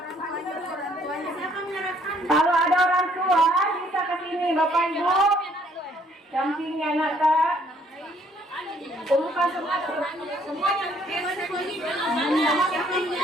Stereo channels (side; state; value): both; normal; correlation 0.64